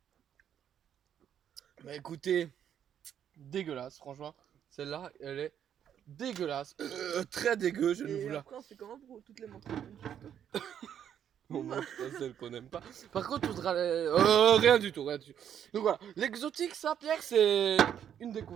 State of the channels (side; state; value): left; quieter; 9.3 dB